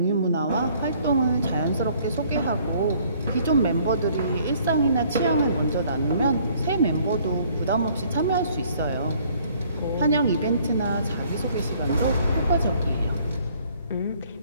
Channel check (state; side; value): inverted; both; correlation -0.60